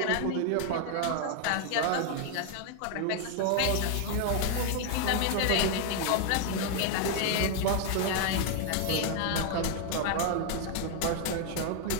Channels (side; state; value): both; different; correlation 0.00